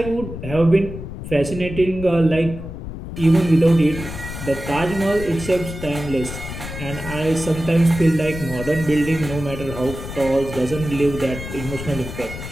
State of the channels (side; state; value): left; noise; rumble, 9 dB below the sound